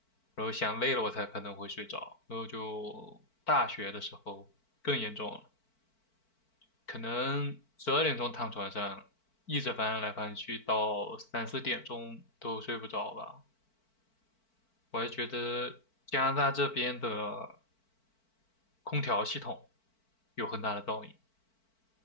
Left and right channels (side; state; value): right; late; 4.5 ms